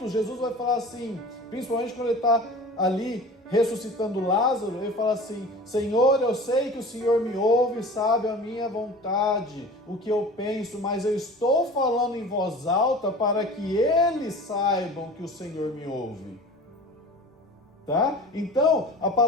Jesus vai falar assim, principalmente quando ele está ali ressuscitando Lázaro, ele fala assim: Senhor, eu sei que o Senhor me ouve, sabe a minha vontade, o que eu penso, mas eu estou falando em voz alta para que eles saibam que o Senhor me ouve. Tá? Então, a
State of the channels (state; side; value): normal; both; correlation 0.39